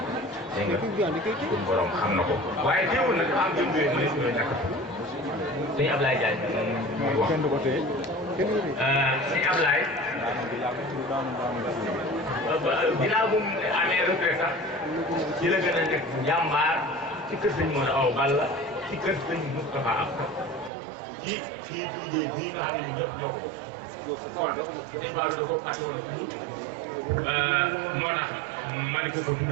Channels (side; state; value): left; drops out; at 20.7 s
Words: dégg nga suñu borom xam na ko waaye teewul nag am jëm yooyu mu ne suñu ñàkk sëñ Ablaye Diagne muy wax sëñ Ablaye ginnaaw bu mu amee retraite sax ci la gën a nekk jàmbaar ci kër sëñ Modou Awa Balla ci kër sëñ Moustapha Absa ci liggéey bii nga xam ne ñëpp ñoo ko kon dañ faa da ko fàtte woon moo tax ma di ko